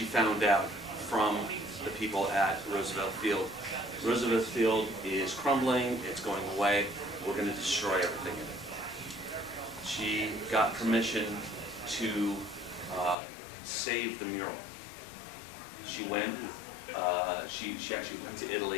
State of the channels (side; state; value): right; drops out; at 13.2 s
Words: found out from the people at Roosevelt Field, Roosevelt Field is crumbling, it's going away, we're going to destroy everything in it. She got permission to save the mural. She went, she actually went to